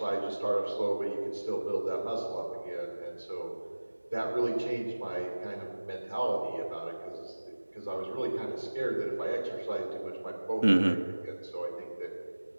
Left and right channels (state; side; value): inverted; both; correlation -1.00